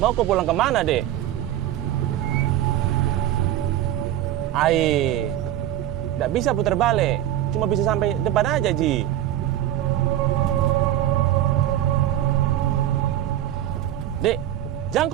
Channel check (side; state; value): left; quieter; 12.5 dB